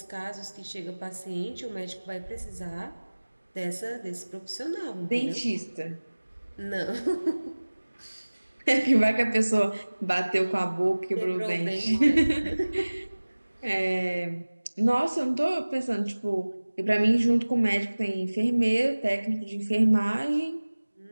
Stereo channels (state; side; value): inverted; both; correlation -1.00